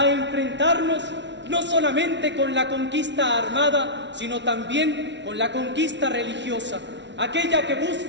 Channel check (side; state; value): left; late; 0.52 ms